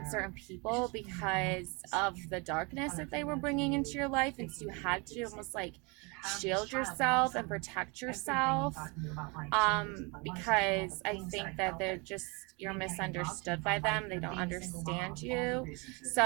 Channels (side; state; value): left; quieter; 29.8 dB